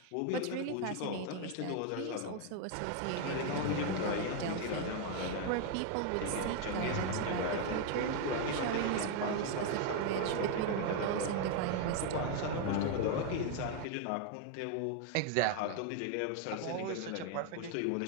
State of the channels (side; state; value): both; different; correlation 0.01